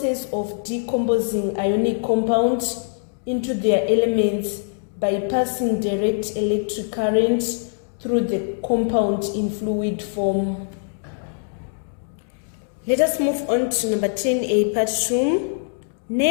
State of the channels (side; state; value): right; silent; digital silence